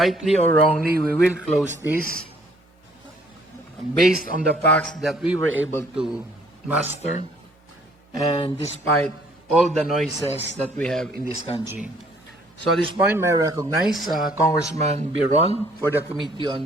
or wrongly, we will close this based on the facts that we were able to master and despite all the noises that we have in this country. So at this point, may I recognize Congressman Biron for the Committee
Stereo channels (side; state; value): both; normal; correlation 0.61